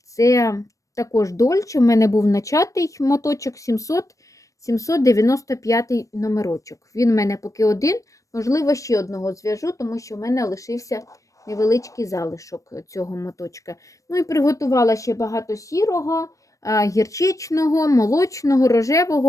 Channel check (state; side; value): late; right; 0.16 ms